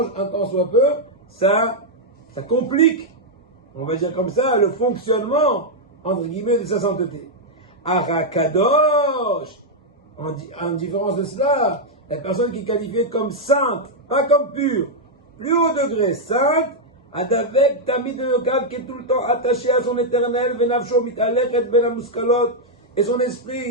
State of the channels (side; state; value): both; normal; correlation -0.03